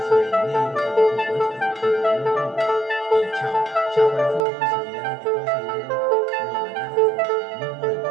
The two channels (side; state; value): left; drops out; at 4.5 s